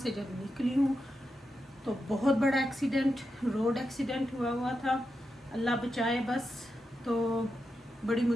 जब निकली हूँ तो बहुत बड़ा एक्सीडेंट, रोड एक्सीडेंट हुआ था। अल्लाह बचाए बस। तो बड़ी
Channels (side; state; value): both; normal; correlation 0.87